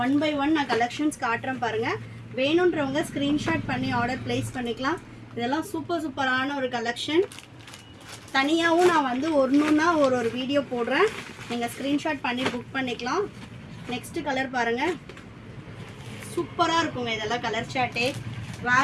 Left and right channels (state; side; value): identical; both; correlation 1.00